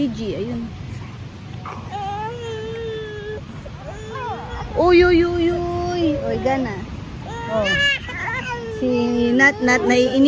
Ayun. Uy. Uy, gana. Oh. Si Nat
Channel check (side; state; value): both; identical; correlation 1.00